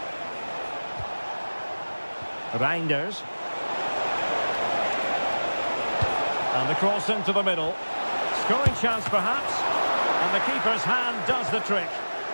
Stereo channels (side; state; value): both; inverted; correlation -1.00